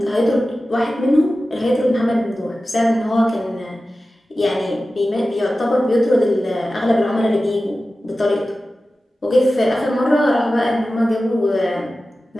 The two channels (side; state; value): both; normal; correlation 0.95